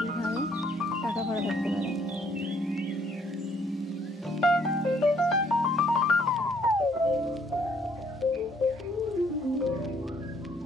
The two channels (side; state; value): both; normal; correlation 0.65